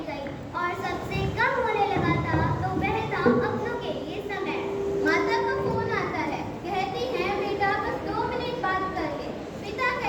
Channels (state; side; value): identical; both; correlation 1.00